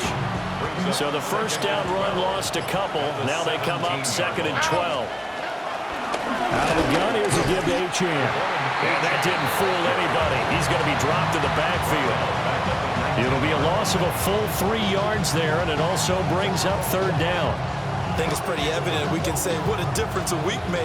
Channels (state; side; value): identical; both; correlation 1.00